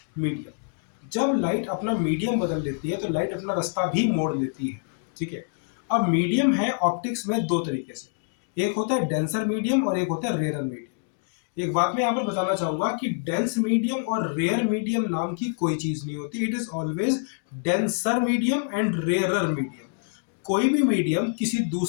medium. जब लाइट अपना मीडियम बदल लेती है तो लाइट अपना रास्ता भी मोड़ लेती है। ठीक है, अब मीडियम है ऑप्टिक्स में दो तरीके से, एक होता है डेंसर मीडियम और एक होता है रेयर मीडियम। एक बात मैं यहाँ पर बताना चाहूंगा कि डेंस मीडियम और रेयर मीडियम नाम की कोई चीज नहीं होती। It is always denser medium and rarer medium. कोई भी मीडियम किसी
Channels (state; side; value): silent; right; digital silence